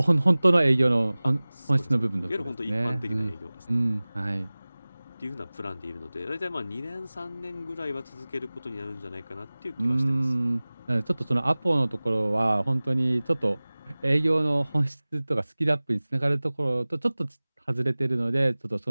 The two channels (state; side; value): inverted; both; correlation -0.99